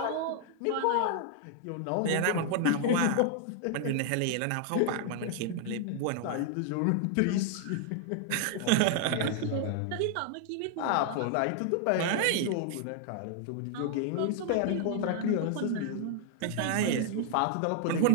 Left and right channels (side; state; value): both; different; correlation 0.00